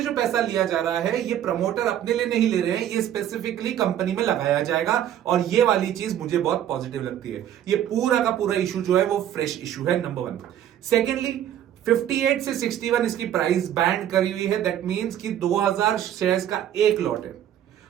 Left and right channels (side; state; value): left; quieter; 10.9 dB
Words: जो पैसा लिया जा रहा है ये प्रमोटर अपने लिए नहीं ले रहे हैं, ये स्पेसिफिकली कंपनी में लगाया जाएगा। और ये वाली चीज मुझे बहुत पॉजिटिव लगती है। ये पूरा का पूरा इशू जो है वो फ्रेश इशू है, नंबर वन। सेकेंडली, 58 से 61 इसकी प्राइस बैंड करी हुई है। दैट मींस कि 2000 शेयर्स का एक लॉट है।